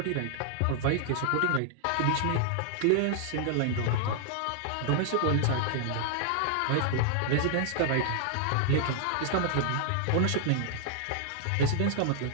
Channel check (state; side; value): different; both; correlation -0.01